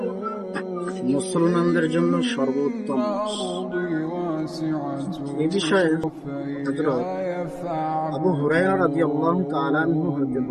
মুসলমানদের জন্য সর্বোত্তম মাস। এ বিষয়ে হযরত আবু হুরায়রা রাদিয়াল্লাহু তাআলা আনহু হতে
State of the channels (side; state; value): both; identical; correlation 1.00